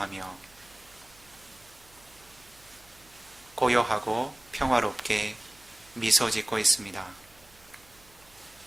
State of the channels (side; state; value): right; noise; hum, 27 dB below the sound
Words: 고요하고 평화롭게 미소 짓고 있습니다.